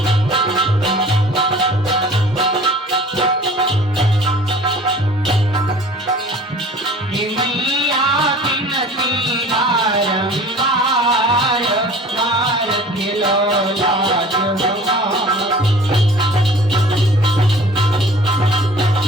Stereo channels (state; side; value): normal; both; correlation 0.46